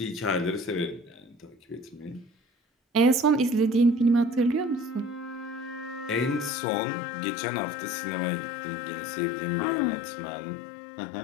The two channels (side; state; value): right; drops out; at 6.5 s